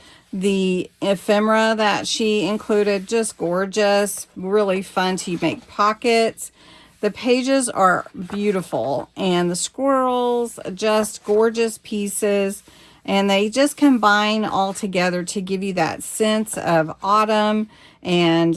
the ephemera that she included, just gorgeous, really fun to make pockets. The pages are beautiful, and the squirrels, just gorgeous pieces. And they just combine all together to give you that sense of autumn,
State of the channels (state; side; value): identical; both; correlation 1.00